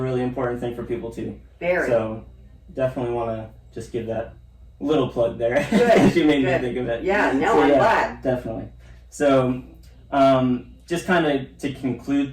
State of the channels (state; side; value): identical; both; correlation 1.00